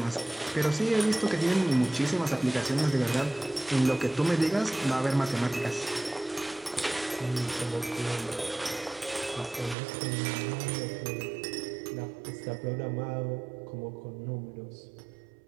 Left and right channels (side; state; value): left; drops out; at 9.8 s